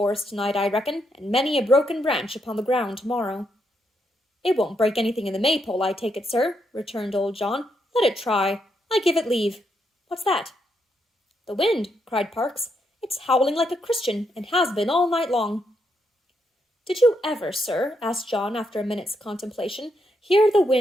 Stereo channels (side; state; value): both; normal; correlation 0.79